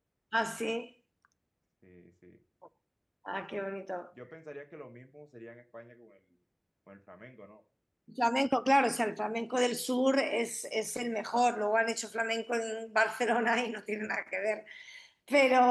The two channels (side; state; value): both; identical; correlation 1.00